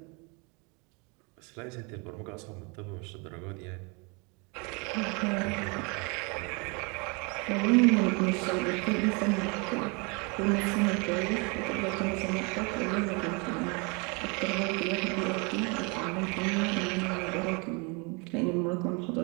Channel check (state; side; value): quieter; left; 31.0 dB